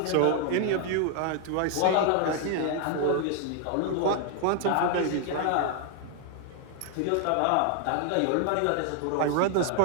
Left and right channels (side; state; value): both; different; correlation 0.00